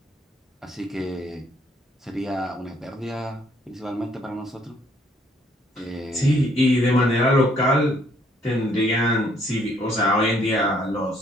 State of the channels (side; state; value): both; normal; correlation 0.65